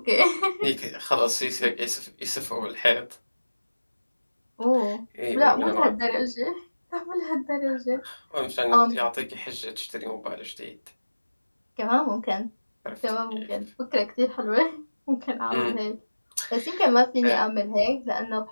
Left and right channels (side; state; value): both; inverted; correlation -1.00